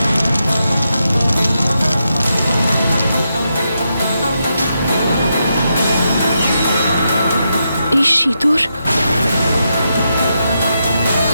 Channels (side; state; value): both; inverted; correlation -0.84